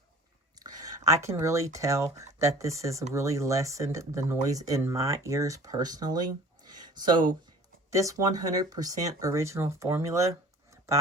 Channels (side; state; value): both; normal; correlation 0.46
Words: I can really tell that this has really lessened the noise in my ears personally. So this 100% original formula